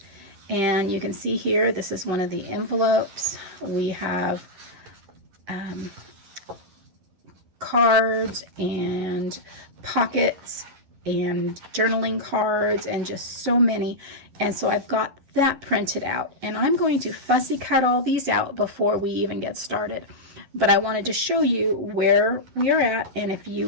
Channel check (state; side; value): late; left; 11 ms